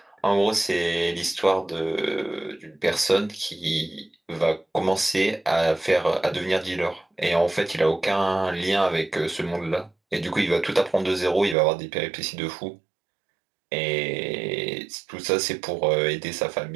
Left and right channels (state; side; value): drops out; left; at 11.6 s